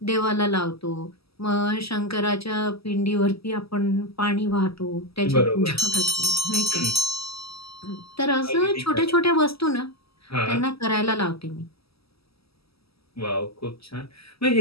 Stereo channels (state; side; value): late; right; 0.76 ms